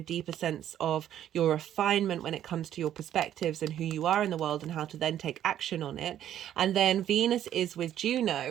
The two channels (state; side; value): quieter; left; 11.1 dB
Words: deeper sense of your refinement when it comes to your perspectives and who you are in the world, and how to then take action on it. And then Venus is with